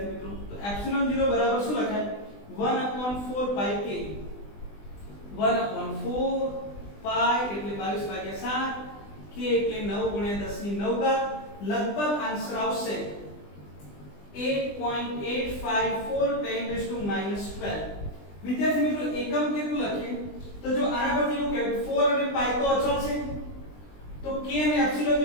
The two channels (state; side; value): late; right; 20 ms